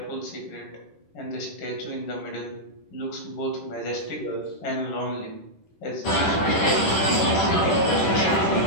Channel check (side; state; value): right; late; 10 ms